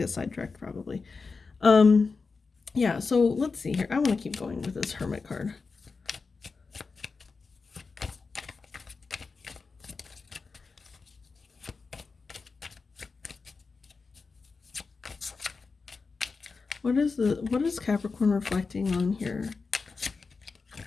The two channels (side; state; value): right; quieter; 4.5 dB